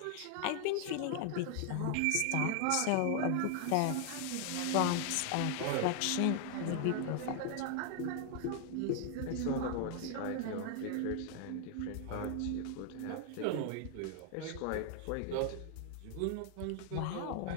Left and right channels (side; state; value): both; different; correlation 0.00